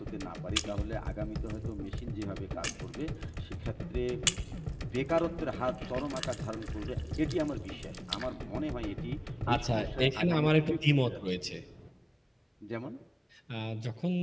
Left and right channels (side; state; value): both; identical; correlation 1.00